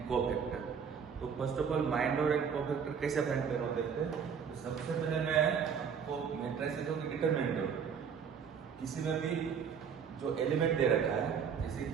कोफैक्टर। तो first of all minor and cofactor कैसे फाइंड करना देखते हैं। तो सबसे पहले मैं आपको मैट्रिसेस की डिटरमिनेंट दूँ। किसी में भी जो एलिमेंट दे रखा है, जैसे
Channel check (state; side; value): quieter; left; 6.9 dB